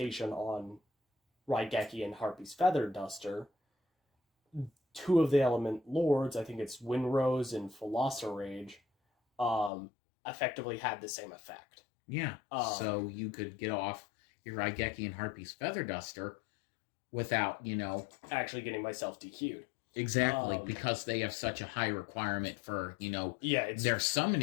on Raigeki and Harpy's Feather Duster, two of the Element Lords, I think it's Windrose and Rage, effectively had the same effect. Yeah, so you could get off your Raigeki and Harpy's Feather Duster without, actually getting myself DQ'd. Exactly, because they have such a high requirement for, their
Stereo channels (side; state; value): right; drops out; at 9.7 s